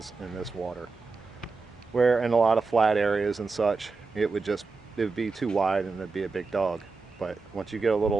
in this water. Where in a lot of flat areas and such, it would be too wide and it'd be a big dog. But once you get a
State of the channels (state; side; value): quieter; left; 4.2 dB